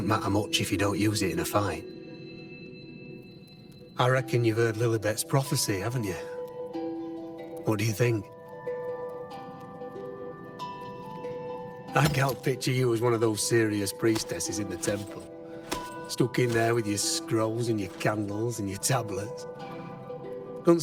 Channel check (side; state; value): both; identical; correlation 1.00